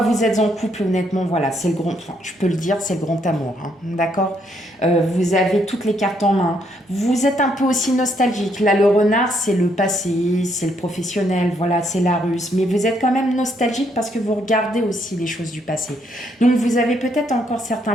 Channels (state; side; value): normal; both; correlation 0.72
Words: vous êtes en couple, honnêtement, voilà, c'est le grand, enfin, je peux le dire, c'est le grand amour, hein, d'accord. Vous avez toutes les cartes en main. Vous êtes un peu aussi nostalgique. Là, le renard, c'est le passé, c'est le professionnel, voilà, c'est la ruse. Mais vous êtes quand même nostalgique parce que vous regardez aussi les choses du passé. Donc, vous avez peut-être encore certains